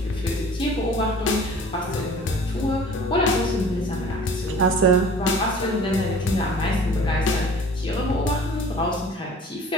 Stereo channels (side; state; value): both; normal; correlation 0.46